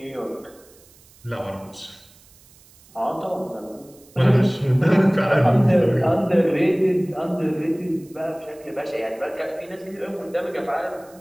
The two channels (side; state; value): right; noise; hiss, 27 dB below the sound